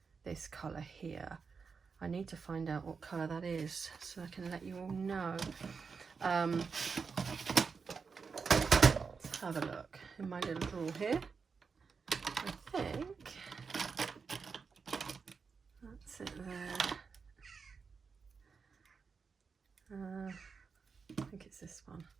this colour here. I need to find out what colour that is so I can let you all know. Have a look in my little drawer here. I think that's it there. I think it's this one.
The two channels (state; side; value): quieter; left; 5.3 dB